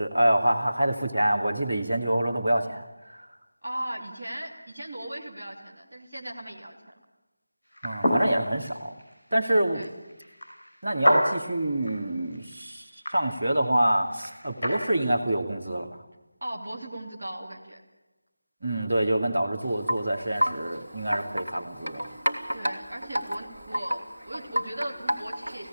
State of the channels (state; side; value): inverted; both; correlation -0.95